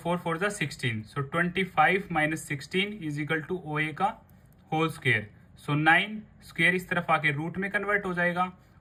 4 जा 16, so 25 minus 16 is equal to OA का होल स्क्वायर। सो 9 स्क्वायर इस तरफ आके रूट में कन्वर्ट हो जाएगा,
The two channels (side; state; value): both; identical; correlation 1.00